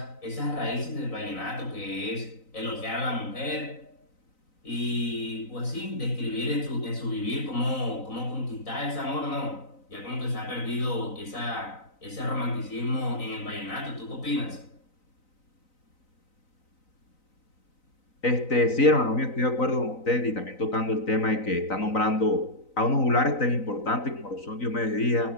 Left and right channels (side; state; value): right; late; 3.9 ms